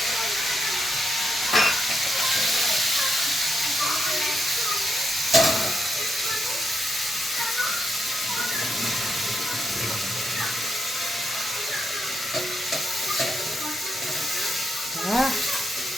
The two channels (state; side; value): normal; both; correlation 0.82